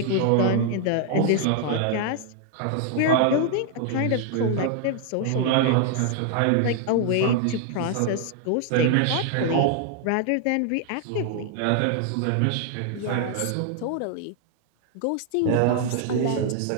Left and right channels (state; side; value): different; both; correlation 0.00